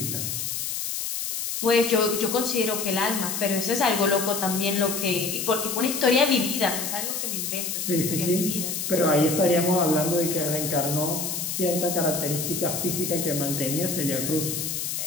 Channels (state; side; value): noise; left; hiss, 3 dB below the sound